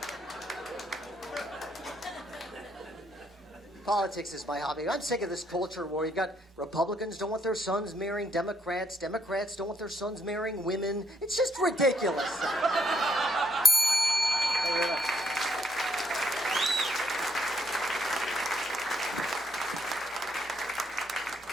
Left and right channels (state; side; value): normal; both; correlation 0.72